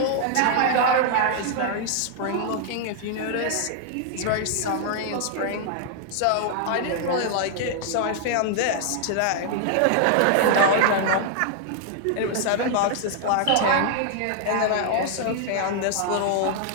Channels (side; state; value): both; different; correlation 0.00